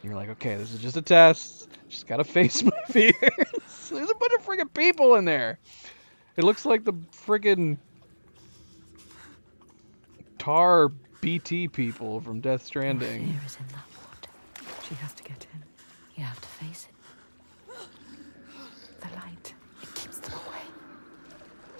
you're like, okay, this is just a test. Just gotta face my fears. There's a bunch of friggin' people in there. It looks like the friggin' tar BT people from Death Stranding. Fear is in that water. She has to get in. You have to face it. The light. It keeps them away.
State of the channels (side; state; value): both; inverted; correlation -1.00